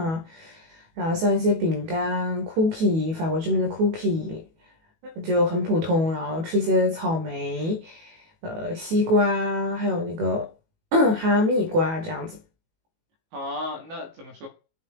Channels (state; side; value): late; left; 18 ms